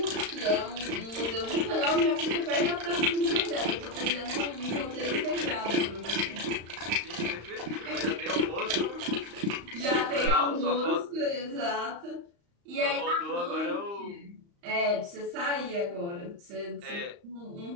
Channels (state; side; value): late; left; 35 ms